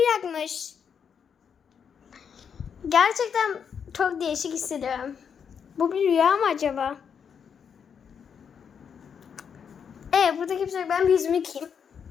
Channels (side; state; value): right; quieter; 7.1 dB